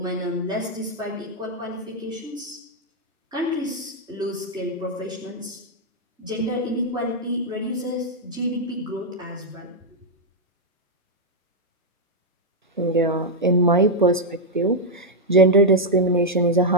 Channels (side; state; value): both; normal; correlation -0.01